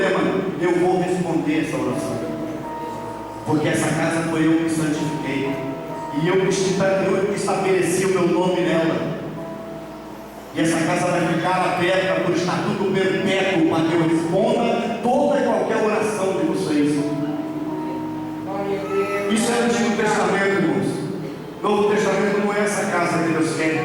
eu vou responder essa oração, porque essa casa foi eu que santifiquei, e eu que estabeleci o meu nome nela. E essa casa vai ficar aberta por estatuto perpétuo, para que eu responda toda e qualquer oração de vocês. Isso é o Antigo Testamento, irmãos. Novo Testamento não é essa casa que Deus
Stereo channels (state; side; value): identical; both; correlation 1.00